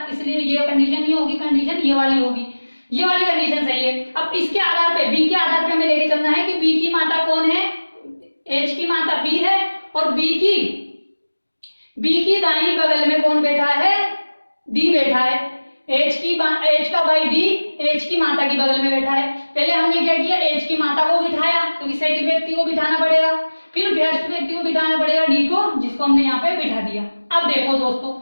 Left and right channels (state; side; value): inverted; both; correlation -1.00